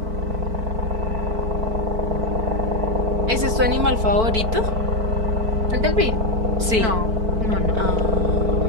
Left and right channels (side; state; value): left; late; 4.5 ms